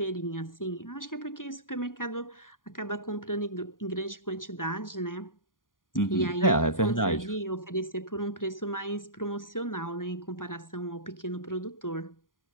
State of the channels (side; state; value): right; late; 0.89 ms